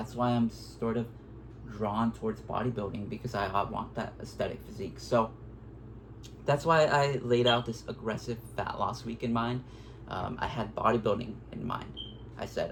why I'm sort of drawn towards bodybuilding, because I want that aesthetic physique. So that's why I laid out this aggressive fat loss week in mind. I had bodybuilding in mind. I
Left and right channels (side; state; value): both; identical; correlation 1.00